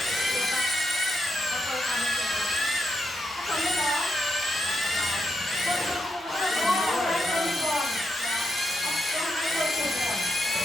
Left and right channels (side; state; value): both; normal; correlation 0.83